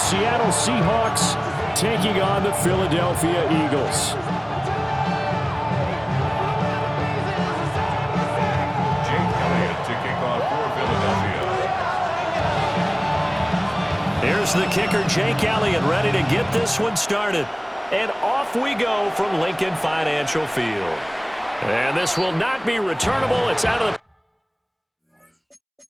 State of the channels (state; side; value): identical; both; correlation 1.00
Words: Seahawks taking on the Philadelphia Eagles. Here's the kicker, Jake Elliott, ready to get this one started. And off we go from Lincoln Financial Field. And this will not be returnable. It's out of the...